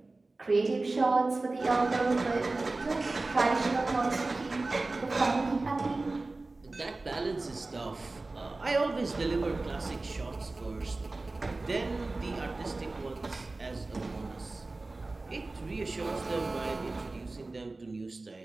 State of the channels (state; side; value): quieter; left; 3.2 dB